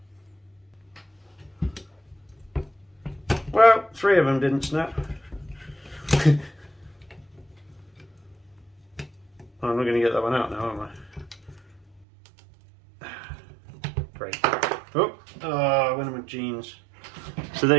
Well, 3 of them didn't snap. I'm not going to get that one out now, am I? Great. Oh, I went on my jeans. So there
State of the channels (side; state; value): left; drops out; at 12.1 s